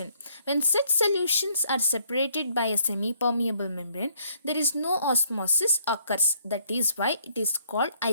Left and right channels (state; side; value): inverted; both; correlation -0.66